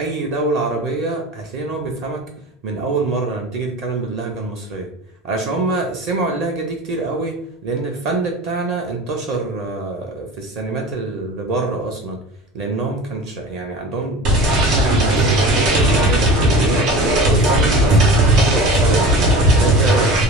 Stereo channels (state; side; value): normal; both; correlation 0.36